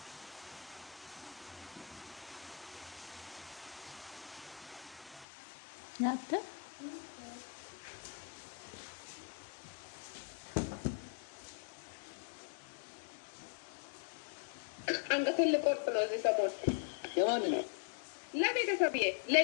ናተ አንገቴን ልቆርጥ ነው እዚህ ሰሞን። የማንን ነው? ለቤተሰብዬ፣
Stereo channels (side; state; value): right; drops out; at 5.2 s